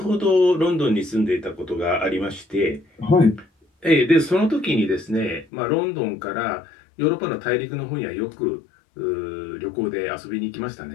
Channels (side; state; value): right; drops out; at 5.5 s